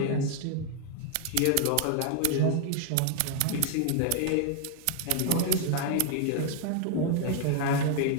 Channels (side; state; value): both; different; correlation 0.00